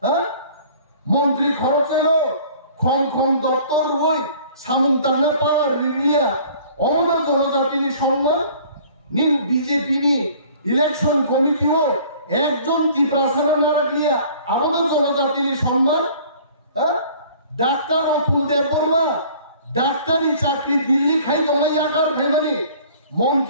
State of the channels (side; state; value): both; inverted; correlation -0.51